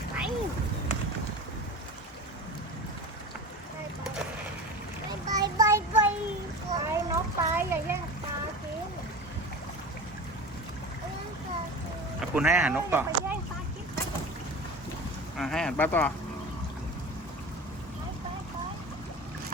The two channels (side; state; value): both; normal; correlation 0.32